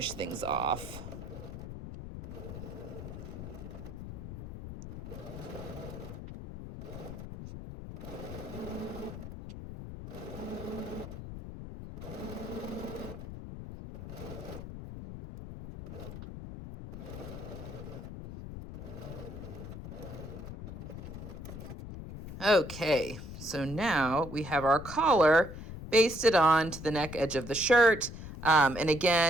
things off. Okay, so now we have our collar basted on to the neck edge of the shirt. And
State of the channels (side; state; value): left; noise; rumble, 10 dB below the sound